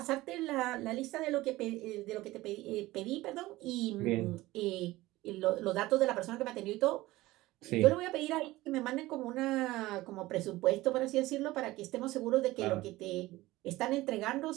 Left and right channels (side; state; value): left; quieter; 18.3 dB